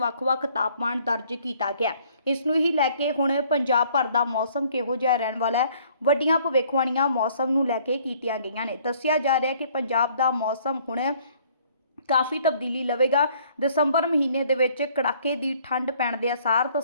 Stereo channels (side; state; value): both; inverted; correlation -0.60